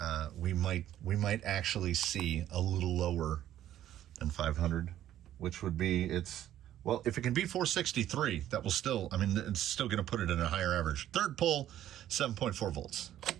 We might actually see a little lower than 500, which would be if it can be 463, that will still, it's still going to put it in a higher average. Third pull, 7.4 volts.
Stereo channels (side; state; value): left; quieter; 12.1 dB